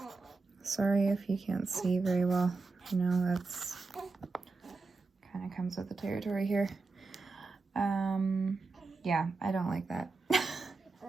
Sorry if you can't see very well. You know, that's kind of comes with the territory here. Yeah, I don't like that.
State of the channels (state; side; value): quieter; left; 4.0 dB